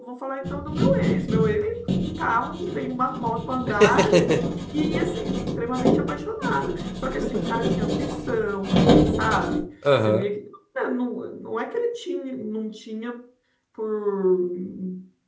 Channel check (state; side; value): identical; both; correlation 1.00